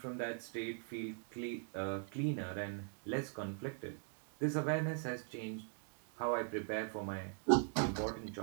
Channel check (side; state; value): left; silent; 50 dB below the other